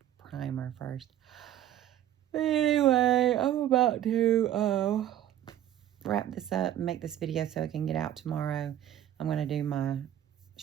primer first. But anyway, I'm about to wrap this up and make this video so it can get out tomorrow. I'm going to do my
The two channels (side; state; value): left; quieter; 11.8 dB